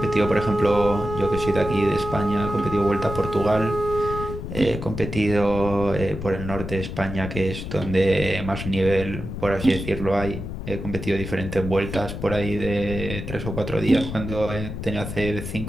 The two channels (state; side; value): noise; left; rumble, 7 dB below the sound